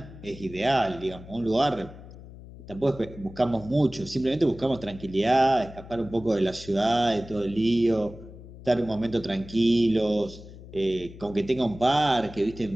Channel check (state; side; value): noise; left; hum, 16 dB below the sound